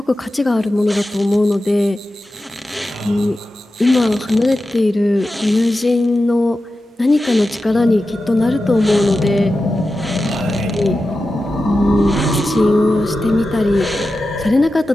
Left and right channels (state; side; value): normal; both; correlation 0.92